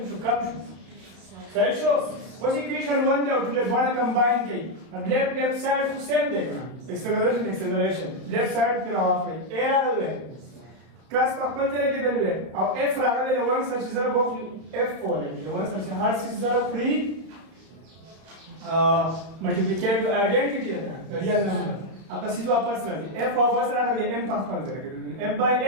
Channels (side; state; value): left; late; 32 ms